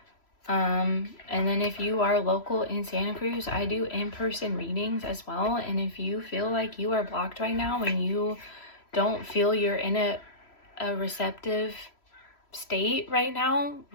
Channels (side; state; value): right; late; 3.0 ms